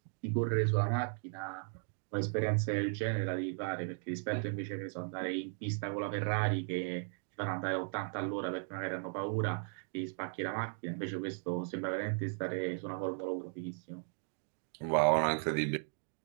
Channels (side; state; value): left; silent; 53 dB below the other